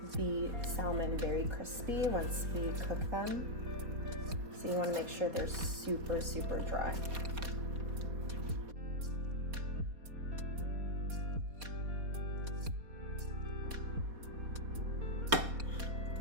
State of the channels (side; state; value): left; late; 4.2 ms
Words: the salmon very crispy once we cook them. So you want to make sure they're super, super dry.